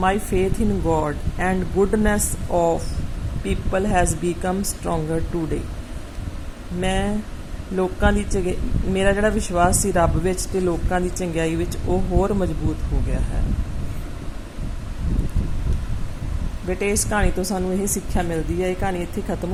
faith in God and goodness of people has become stronger today. ਮੈਂ ਲੋਕਾਂ ਦੀ ਮੇਰਾ ਜਿਹੜਾ ਵਿਸ਼ਵਾਸ ਸੀ ਰੱਬ ਵਿੱਚ ਅਤੇ ਲੋਕਾਂ ਦੀ ਚੰਗਿਆਈ ਵਿੱਚ ਉਹ ਹੋਰ ਮਜ਼ਬੂਤ ਹੋ ਗਿਆ ਹੈ. ਬੇਟੇ ਇਸ ਕਹਾਣੀ ਤੋਂ ਸਾਨੂੰ ਇਹ ਸਿੱਖਿਆ ਮਿਲਦੀ ਹੈ. ਇਹ ਕਹਾਣੀ ਇੱਥੇ ਖਤਮ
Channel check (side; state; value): both; identical; correlation 1.00